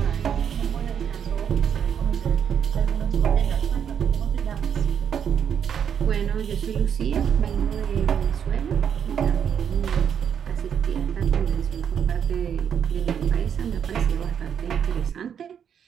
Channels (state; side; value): quieter; left; 8.1 dB